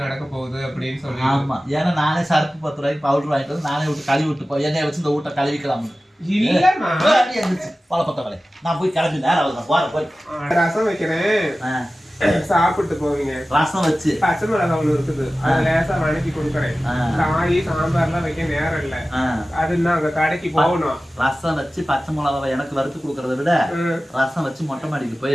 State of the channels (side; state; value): both; normal; correlation 0.96